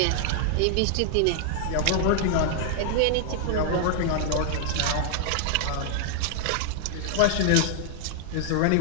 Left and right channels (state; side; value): different; both; correlation 0.00